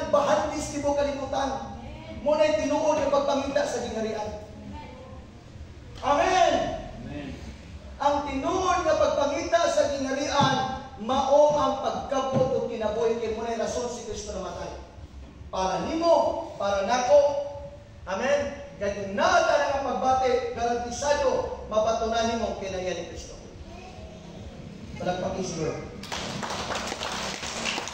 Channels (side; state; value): both; identical; correlation 1.00